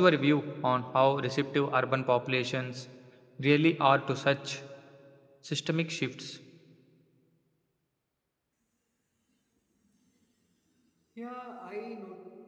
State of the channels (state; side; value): identical; both; correlation 1.00